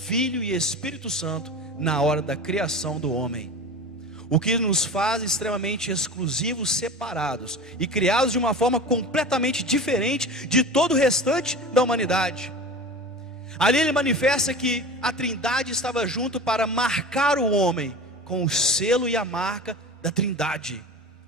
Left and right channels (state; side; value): normal; both; correlation 0.33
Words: e Espírito Santo na hora da criação do homem, o que nos faz extremamente exclusivos, separados e criados de uma forma completamente diferente de todo o restante da humanidade. Ali ele manifesta que a trindade estava junto para marcar o homem com o selo e a marca da trindade,